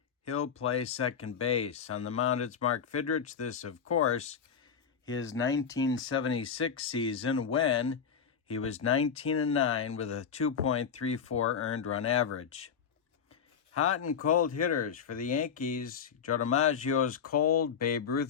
He'll play second base. On the mound, it's Mark Fidrych. This, of course, his 1976 season when he was 19-9 with a 2.34 earned run average. Hot and cold hitters for the Yankees. Joe DiMaggio is cold. Babe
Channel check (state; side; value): quieter; right; 7.0 dB